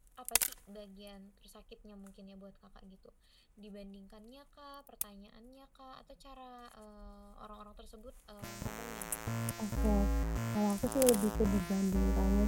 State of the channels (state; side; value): identical; both; correlation 1.00